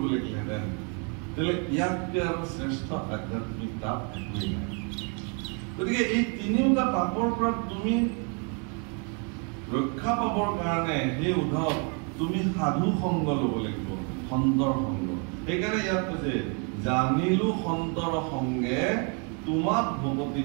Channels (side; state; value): left; quieter; 37.3 dB